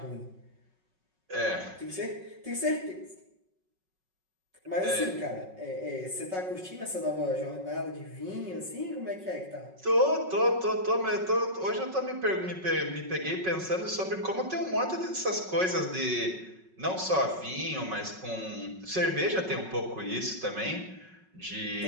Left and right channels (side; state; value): left; late; 5.4 ms